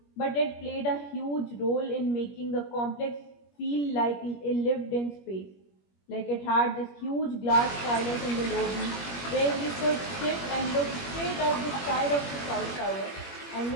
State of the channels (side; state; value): right; late; 21 ms